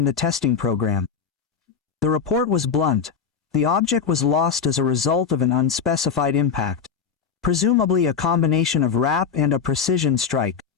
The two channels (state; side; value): quieter; right; 6.5 dB